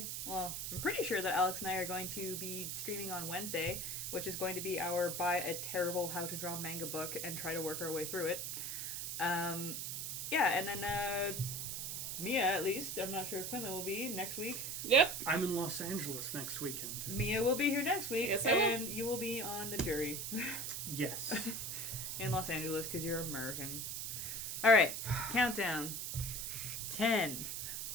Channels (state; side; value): noise; right; hiss, 3 dB below the sound